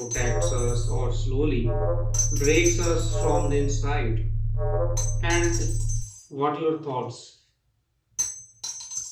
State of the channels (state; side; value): identical; both; correlation 1.00